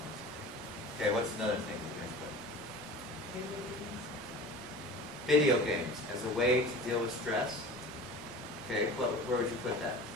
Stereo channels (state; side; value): normal; both; correlation 0.37